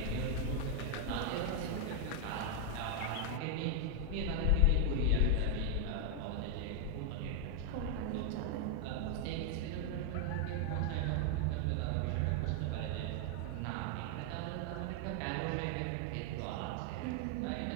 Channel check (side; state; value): both; different; correlation 0.00